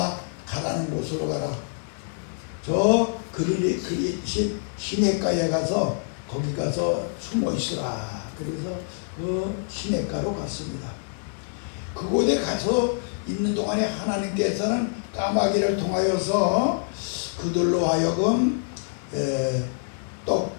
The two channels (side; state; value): right; silent; digital silence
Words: 가라는 곳으로 가라. 저 그리 시냇가에 가서 거기 가서 숨어 있으라. 그래서 그 시냇가로 갔습니다. 그곳에 가서 있는 동안에 하나님께서는 까마귀를 통하여서 그들로 하여금